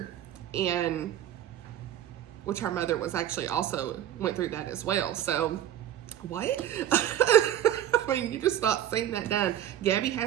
and which her mother was actually also went through that as well. So, what? I mean, you just not seeing that done. Gabby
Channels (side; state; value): left; quieter; 11.7 dB